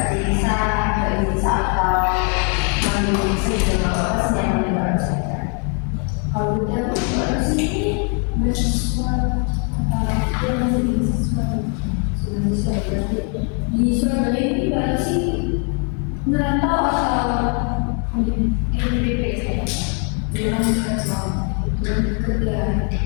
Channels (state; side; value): quieter; right; 39.8 dB